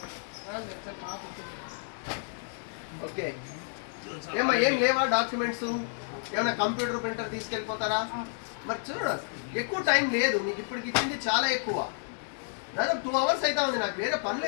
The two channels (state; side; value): silent; right; 58 dB below the other